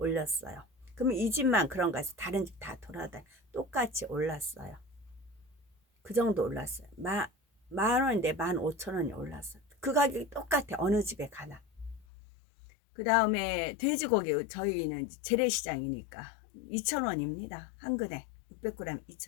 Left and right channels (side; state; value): right; drops out; at 12.1 s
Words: 그러면 이 집만 그런가 해서 다른 집 다 돌아다니 똑같이 올랐어요. 그 정도 올랐어요. 10,000원인데 15,000원이 올랐어요. 그 가격이 똑같아. 어느 집에 가나. 그 다음에 돼지고기 저희는 재래시장이니까 2,000원입니다. 한 근에 600g